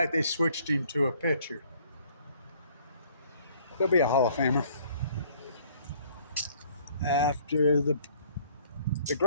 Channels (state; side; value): inverted; both; correlation -0.59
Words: they switched him to a pitcher. He'll be a Hall of Famer. After the